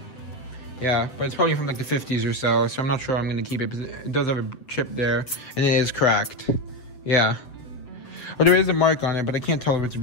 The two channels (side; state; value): right; late; 7.5 ms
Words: Yeah, but it's probably from like the 50s or so I'm not sure I'm gonna keep it, because it does have a chip there, and it is cracked. Yeah. Oh, there is a mark on it, but I can't tell if it's